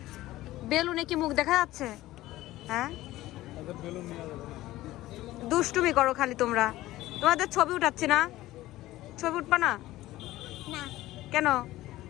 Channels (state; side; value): quieter; right; 16.4 dB